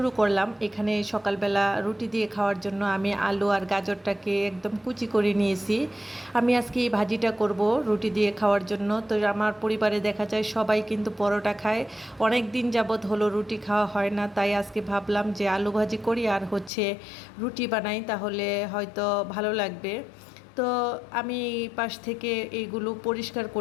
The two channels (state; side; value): drops out; right; at 16.7 s